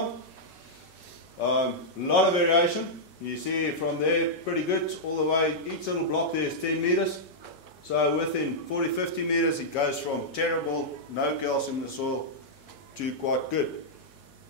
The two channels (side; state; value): right; late; 5.4 ms